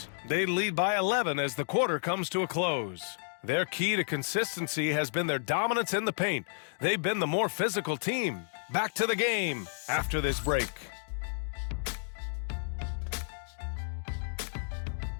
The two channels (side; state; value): right; silent; digital silence